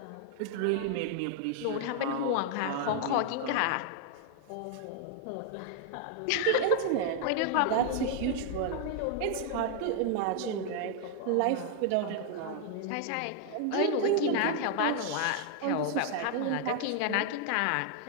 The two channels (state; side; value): different; both; correlation 0.00